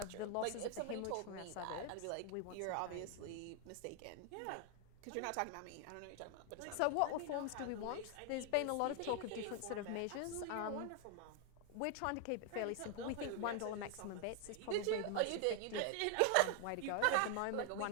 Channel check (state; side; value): different; both; correlation 0.00